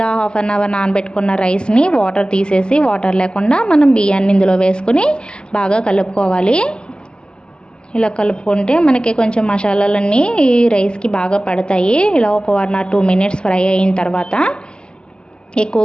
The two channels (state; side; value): late; right; 0.049 ms